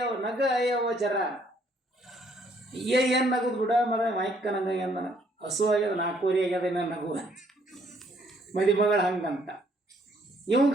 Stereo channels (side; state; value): both; normal; correlation 0.66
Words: ಅಯ್ಯವ ಜರ ಏನ್ ನಗದ್ ಬಿಡ ಮರ ಮೈಕ್ಕ ನಂಗ ಹಸು ಆಗ್ಯದ, 4 ವರೆ ಆಗ್ಯದ ನಗು ಮದಿ ಮಗಳು ಹಂಗಂತ.